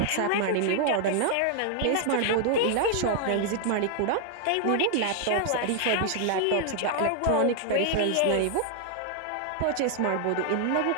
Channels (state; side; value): different; both; correlation 0.00